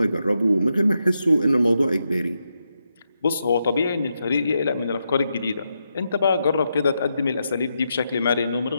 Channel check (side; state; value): both; inverted; correlation -0.84